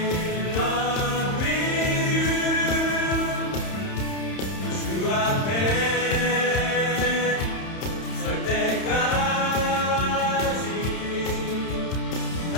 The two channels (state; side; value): late; right; 31 ms